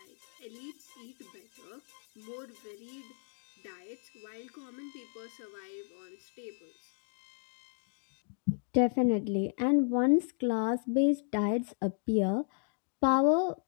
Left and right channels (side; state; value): right; silent; 55 dB below the other